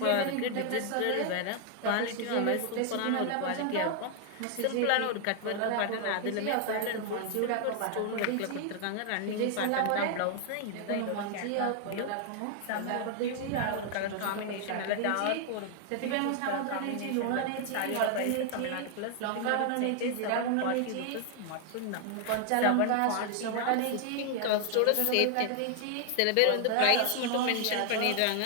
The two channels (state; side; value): different; both; correlation 0.00